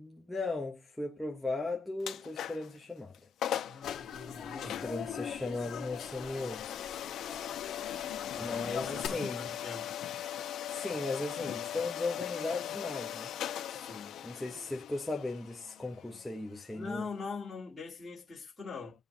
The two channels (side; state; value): right; quieter; 4.8 dB